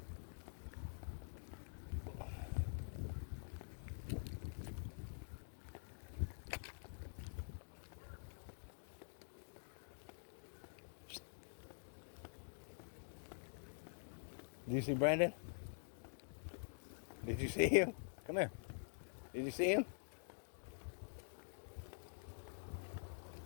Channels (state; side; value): silent; right; digital silence